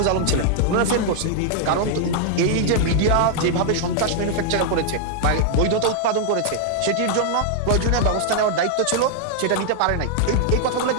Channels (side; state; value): both; different; correlation 0.00